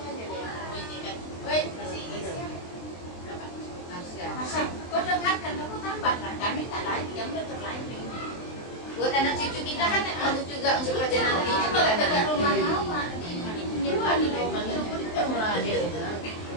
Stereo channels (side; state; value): right; late; 23 ms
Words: Kau dengarkan, kamu tambahlah. Kami tak lagi, yang udah terlanjur. Buat anak cucu kita kan bagus juga untuk kerja nanti. Itu kalau dekat rumah mama, nyewa di rumah itu mulai.